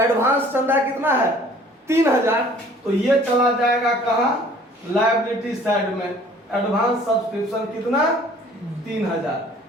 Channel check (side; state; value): both; normal; correlation 0.53